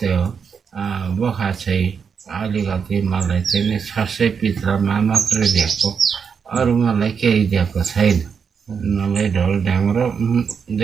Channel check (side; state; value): left; quieter; 6.4 dB